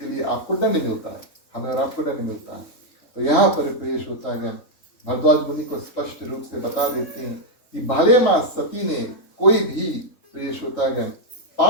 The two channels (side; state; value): right; late; 3.7 ms